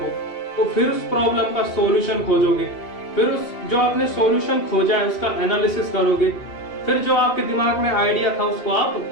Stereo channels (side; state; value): right; late; 2.7 ms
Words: तो फिर उस प्रॉब्लम का सॉल्यूशन खोजोगे, फिर उस जो आपने सॉल्यूशन खोजा है उसका एनालिसिस करोगे, फिर जो आपके दिमाग में आइडिया था उसको आप